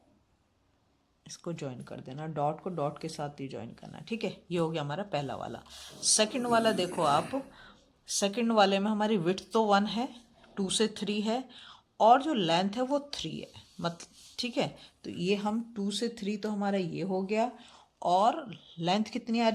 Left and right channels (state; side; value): identical; both; correlation 1.00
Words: इसको ज्वाइन कर देना, डॉट को डॉट के साथ ही ज्वाइन करना। ठीक है, ये हो गया हमारा पहला वाला। सेकंड वाला देखो आप, सेकंड वाले में हमारी विड्थ तो 1 है, 2 से 3 है, और जो लेंथ है वो 3 है मतलब। ठीक है, तो ये हम 2 से 3 तो हमारा ये हो गया, और लेंथ कितनी आ